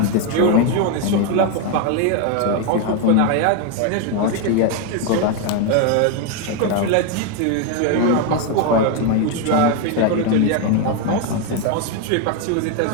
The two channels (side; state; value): both; different; correlation 0.01